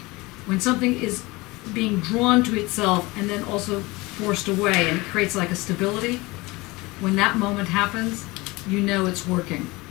When something is being drawn to itself and then also forced away and it creates like a stability, when that moment happens, you know it's working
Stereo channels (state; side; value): quieter; right; 22.7 dB